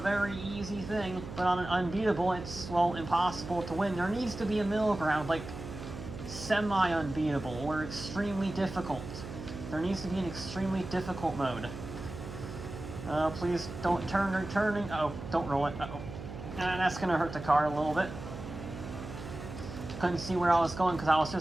easy thing, but on an unbeatable it's, well, impossible to win. There needs to be a middle ground, like semi-unbeatable or extremely difficult. There needs to be an extremely difficult mode. Please don't turning. Oh, don't roll it. Uh-oh. That's gonna hurt the car a little bit. Couldn't see where I was going because I was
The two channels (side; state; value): right; noise; hum, 10 dB below the sound